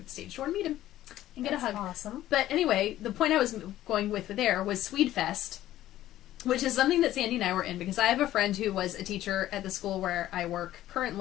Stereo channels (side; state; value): right; quieter; 13.8 dB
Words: the stage door and meet him and get a hug. Awesome. But anyway, the point I was going with there was Swedefest, which is something that Sandy and I were in, because I have a friend who was a teacher at the school where I work